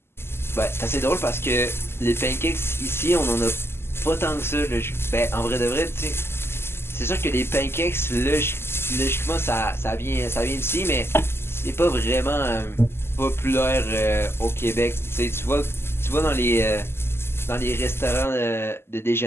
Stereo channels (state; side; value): late; right; 0.12 ms